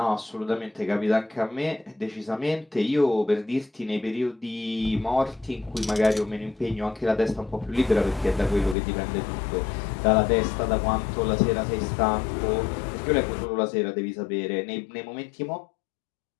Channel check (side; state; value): right; drops out; at 8.8 s